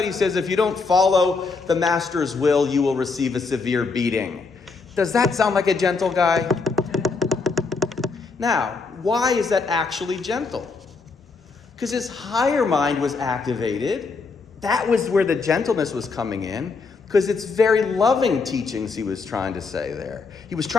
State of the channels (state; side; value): quieter; right; 4.4 dB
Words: he says if you don't follow the master's will, you will receive a severe beating. Does that sound like a gentle guy? Now, why is that actually gentle? Because his higher mind was activated. That was where the gentleness was coming in. Because it's very loving teachings he was trying to say there. He was